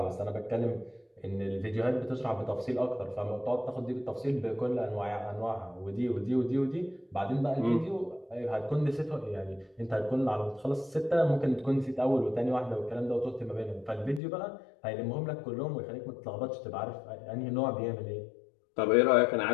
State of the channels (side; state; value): right; drops out; at 14.2 s